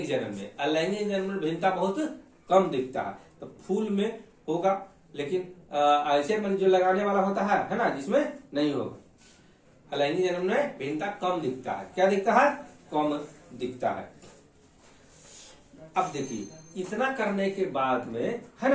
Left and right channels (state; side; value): identical; both; correlation 1.00